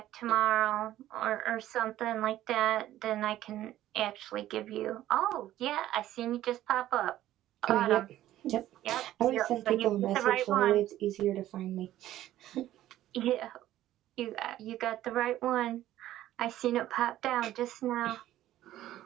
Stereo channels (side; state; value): left; quieter; 13.7 dB